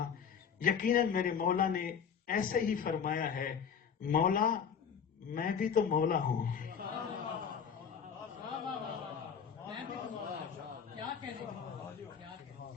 یقیناً میرے مولا نے ایسے ہی فرمایا ہے، مولا میں بھی تو مولا ہوں.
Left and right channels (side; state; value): right; quieter; 7.2 dB